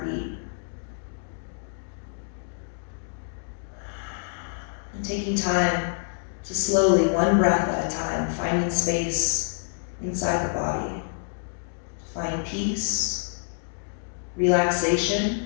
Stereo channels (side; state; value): right; silent; digital silence